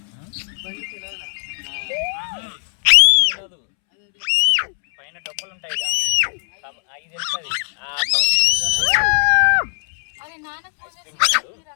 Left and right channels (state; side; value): silent; right; 67 dB below the other